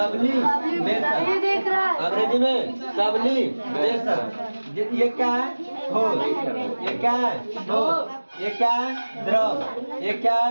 अंग्रेजी में सब्लिमेशन। ये क्या है? ठोस, ये क्या है? ठोस, ये क्या है? द्रव, ये क्या है?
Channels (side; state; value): both; inverted; correlation -1.00